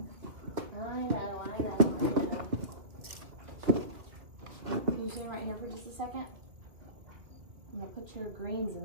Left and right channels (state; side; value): late; left; 2.3 ms